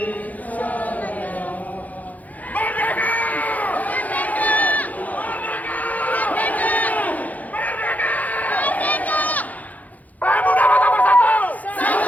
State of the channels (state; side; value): late; right; 0.078 ms